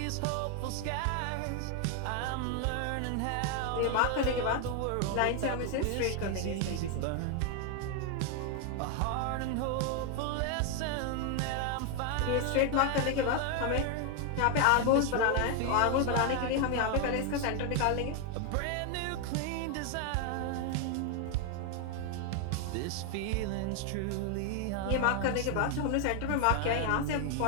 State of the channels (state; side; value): different; both; correlation 0.01